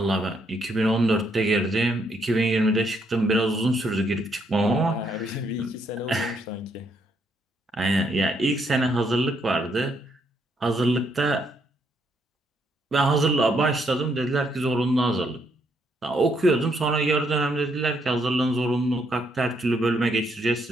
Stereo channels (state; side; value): normal; both; correlation 0.74